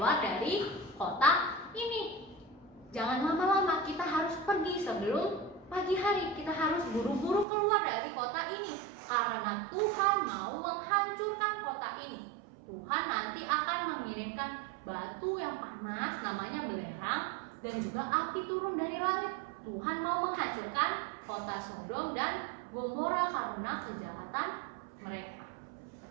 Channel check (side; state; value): left; drops out; at 7.5 s